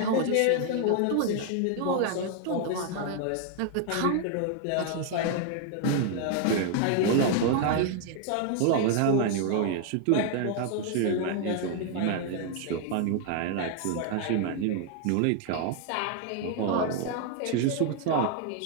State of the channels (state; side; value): different; both; correlation 0.00